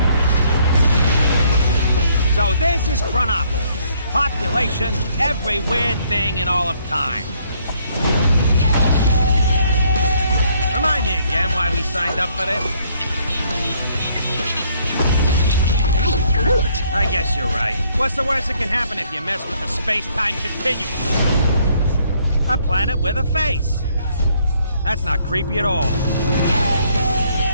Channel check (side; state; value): both; inverted; correlation -0.67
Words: So this is Chronopolis. Population, every weird thing in all of time. Remind me again why we signed up for this? I guess you're right. What's the worst that can happen if you mess with the space-time continuum? A planet with a face. That's not creepy at all.